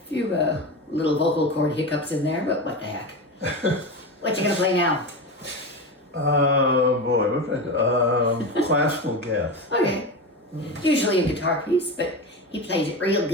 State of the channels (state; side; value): normal; both; correlation 0.22